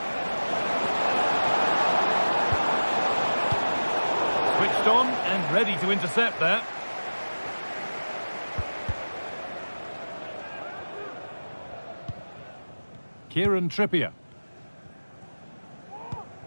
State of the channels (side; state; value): both; inverted; correlation -1.00